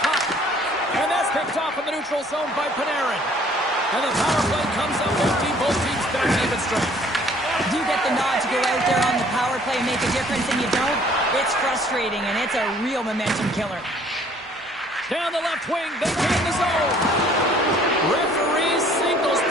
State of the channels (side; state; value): both; normal; correlation 0.57